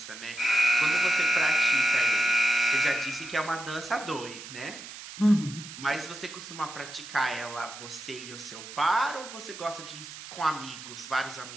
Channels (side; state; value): right; noise; hiss, 13 dB below the sound